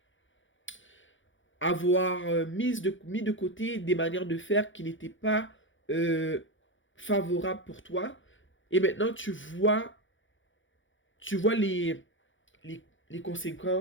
avoir mis de côté des manières de faire qui n'étaient pas euh, favorables pour toi. Et maintenant, tu vois les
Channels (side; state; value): right; late; 0.56 ms